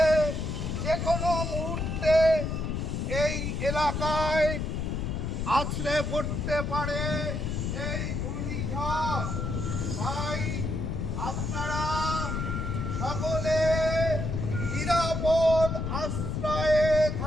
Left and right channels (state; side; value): noise; left; rumble, 2 dB below the sound